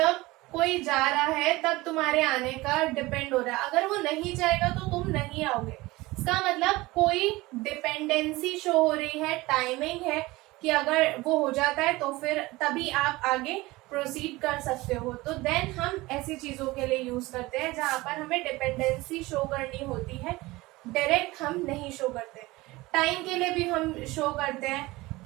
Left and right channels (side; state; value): left; quieter; 20.5 dB